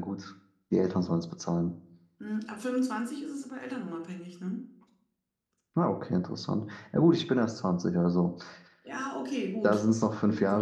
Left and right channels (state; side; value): identical; both; correlation 1.00